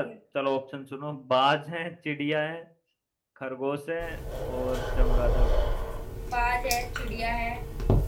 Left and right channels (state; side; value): identical; both; correlation 1.00